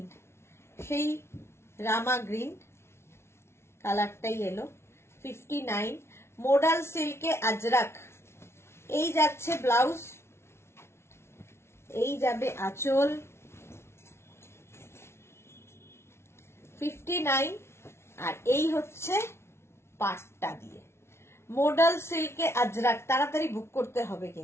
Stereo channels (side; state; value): right; late; 0.12 ms